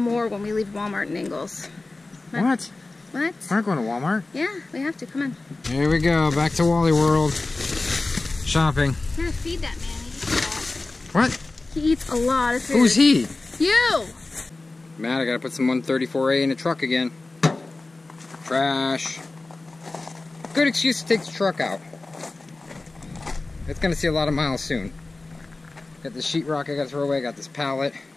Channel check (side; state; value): right; quieter; 3.3 dB